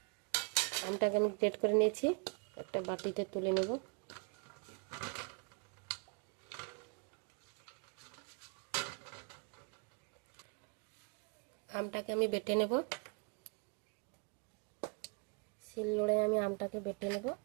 আমটাকে আমি গ্রেট করে নিয়েছি, একটা বাটিতে তুলে নেব। আমটাকে আমি বেটে নেব। শিলনোড়ায় আমি আমটাকে বেটে নেব।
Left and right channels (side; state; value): left; quieter; 35.8 dB